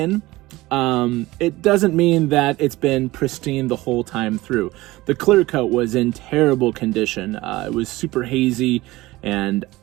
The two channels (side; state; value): left; quieter; 19.1 dB